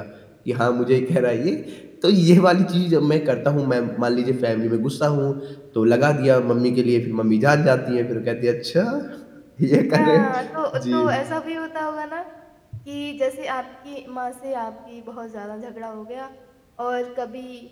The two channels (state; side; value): identical; both; correlation 1.00